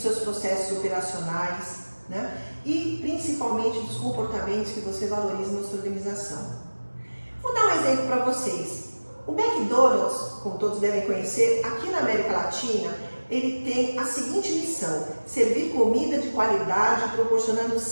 processos operacionais, né? E principalmente dos comportamentos que você valoriza na sua organização. Vou dar um exemplo para vocês. O McDonald's, como todos devem conhecer, aqui na América Latina, ele tem a seguinte missão: servir comida de qualidade, proporcionando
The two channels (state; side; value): inverted; both; correlation -1.00